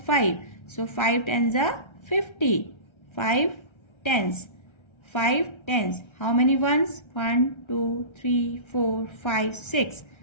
So 5 tens are 50. 5 tens. 5 tens. How many ones? 1 2 3 4 5 6.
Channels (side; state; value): right; late; 1.3 ms